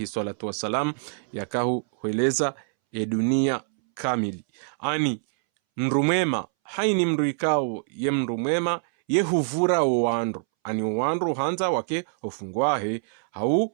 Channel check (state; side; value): silent; left; 62 dB below the other